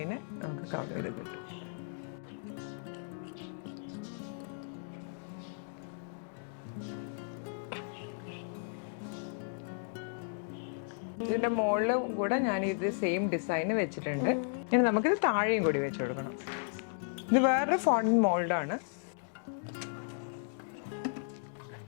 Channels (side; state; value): right; silent; digital silence